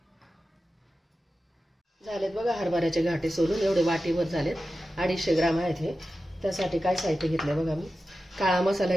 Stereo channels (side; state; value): both; normal; correlation 0.93